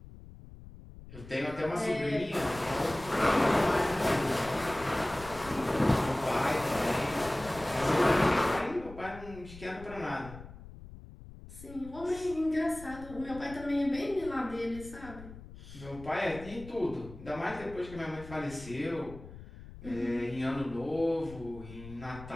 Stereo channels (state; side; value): noise; left; rumble, 16 dB below the sound